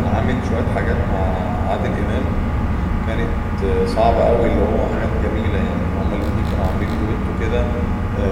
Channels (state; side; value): identical; both; correlation 1.00